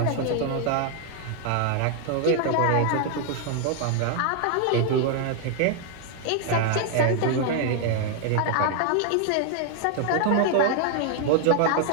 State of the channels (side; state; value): both; different; correlation 0.00